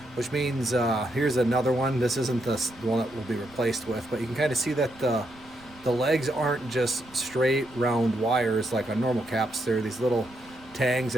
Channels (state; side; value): noise; right; rumble, 24 dB below the sound